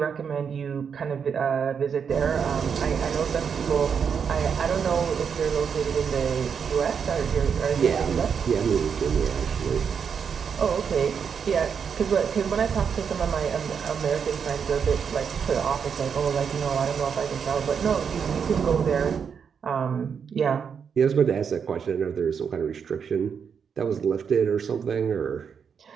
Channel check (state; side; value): quieter; left; 6.8 dB